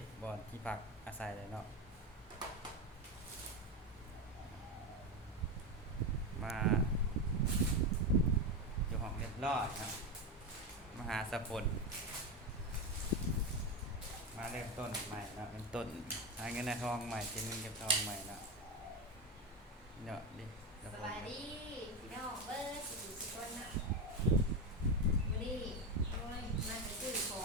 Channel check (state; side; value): normal; both; correlation 0.15